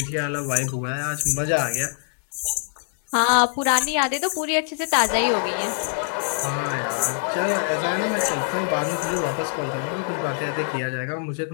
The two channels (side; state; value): right; silent; digital silence